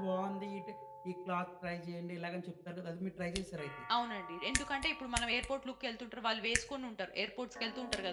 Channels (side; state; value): both; identical; correlation 1.00